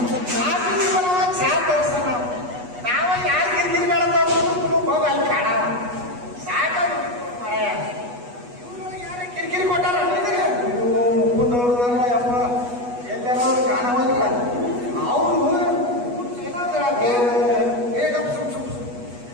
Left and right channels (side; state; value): left; late; 8.2 ms